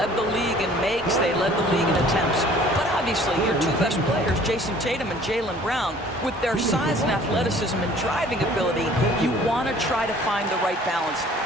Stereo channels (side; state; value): both; normal; correlation 0.52